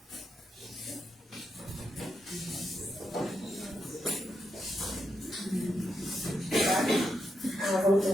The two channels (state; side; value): normal; both; correlation 0.83